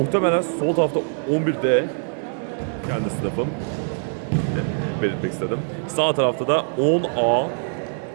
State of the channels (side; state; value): left; silent; digital silence